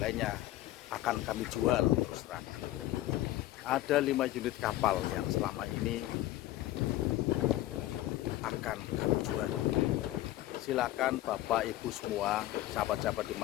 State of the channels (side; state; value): right; quieter; 15.3 dB